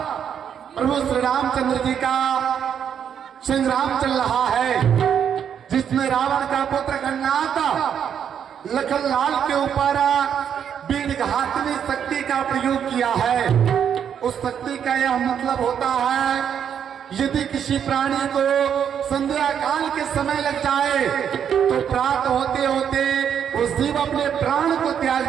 प्रभु श्री रामचंद्र जी का संग्राम चल रहा है, जिसमें रावण का पुत्र गन्नाथ लखन लाल के ऊपर वीरघातनी शक्ति का प्रयोग किया है। उस शक्ति का यह मतलब होता है, यदि किसी प्राणी को संध्या काल के समय लग जाए तो प्राप्त होते होते वो शिव अपने प्राण को त्याग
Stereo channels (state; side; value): quieter; left; 8.4 dB